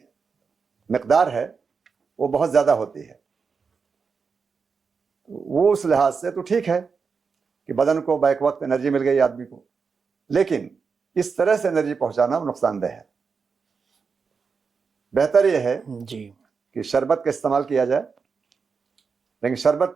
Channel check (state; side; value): quieter; left; 5.4 dB